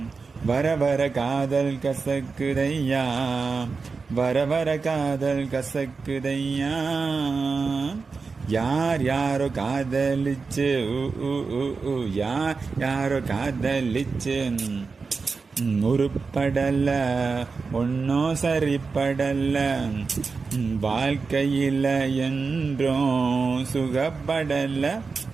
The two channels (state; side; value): quieter; left; 4.6 dB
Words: வர வர காதல் கசக்குதையா வர வர காதல் கசக்குதையா யார் யாரோ காதலிச்சு யார் யாரோ காதலிச்சு உருப்படல ஒன்னும் சரிப்படல வாழ்க்கையில என்றும் சுகப்படல